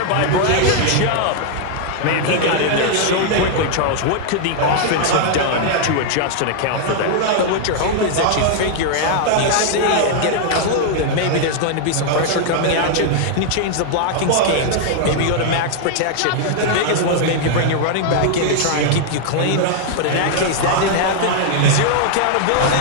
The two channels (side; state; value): both; different; correlation -0.01